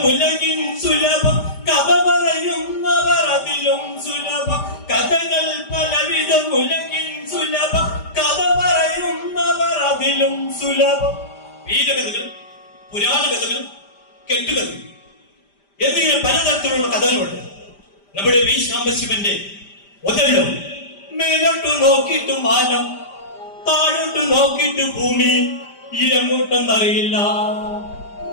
ഉലകിൻ സുലഭം, കഥ പറയുന്നവർ അതിലും സുലഭം. കഥകൾ പലവിധം ഉലകിൻ സുലഭം, കഥ പറയുന്നവർ അതിലും സുലഭം. വീരകഥകൾ, പുരാണ കഥകൾ, കെട്ടുകഥകൾ എന്നിങ്ങനെ പലതരത്തിലുള്ള കഥകളുണ്ട്. നമ്മുടെ വി സാംബശിവന്റെ ഒതല്ലോ മേലോട്ട് നോക്കിയിട്ട് മാനം, താഴോട്ട് നോക്കിയിട്ട് ഭൂമി, എങ്ങോട്ടെന്നറിയില്ല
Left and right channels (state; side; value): late; right; 5.0 ms